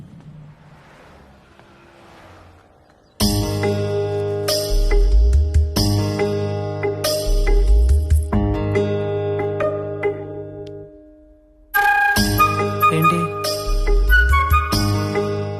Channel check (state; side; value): identical; both; correlation 1.00